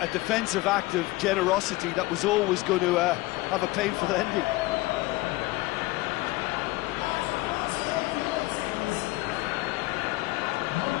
defensive act of generosity that was always going to have a painful ending.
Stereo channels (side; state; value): right; quieter; 20.3 dB